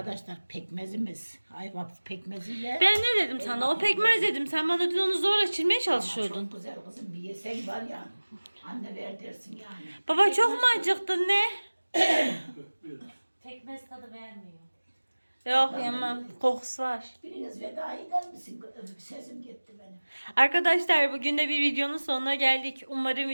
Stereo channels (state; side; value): inverted; both; correlation -1.00